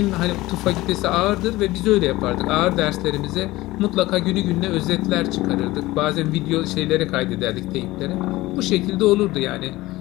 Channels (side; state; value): right; quieter; 18.6 dB